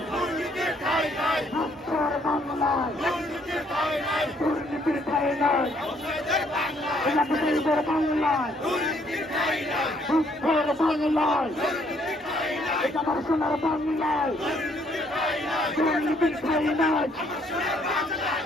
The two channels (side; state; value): both; normal; correlation 0.67